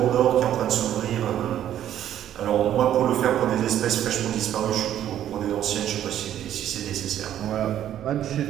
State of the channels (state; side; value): quieter; left; 11.2 dB